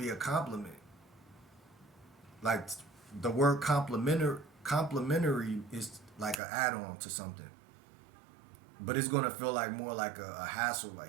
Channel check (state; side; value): drops out; left; at 6.4 s